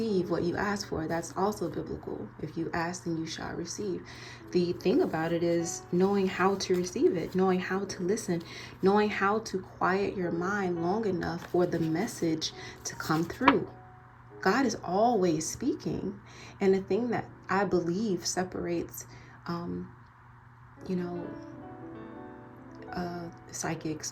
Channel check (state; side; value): identical; both; correlation 1.00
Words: what you ask for. That's also biblical. If you ask, then you shall receive. The thing about it is knowing how to receive it, knowing how to listen, knowing how to quiet your mind long enough for the message to come through. God is always speaking. And the thing that I believe separates,